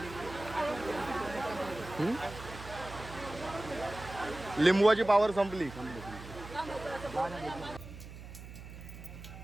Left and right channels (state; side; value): noise; right; hum, 13 dB below the sound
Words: लिंबूची पावर संपली.